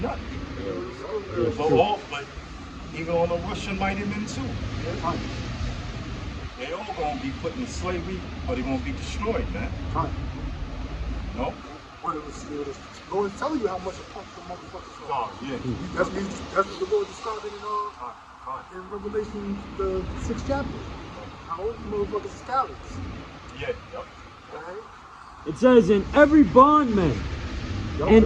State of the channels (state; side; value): identical; both; correlation 1.00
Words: nothing. But even on the Russian mighty men too. Right. They all gonna be put in slavery or they gonna be destroyed, man. Right. No? But it was Lord telling you how much a punk the motherfuckers are. Oh, yeah. That's what the Lord described in Revelation, the 6th chapter. How all these motherfuckers are cowards. Yeah, yep. Right? It says, in every bondman. Y'all And-